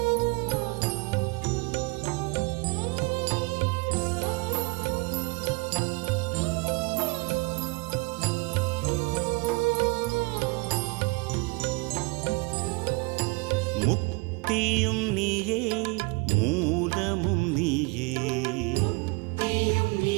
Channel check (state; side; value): quieter; left; 28.3 dB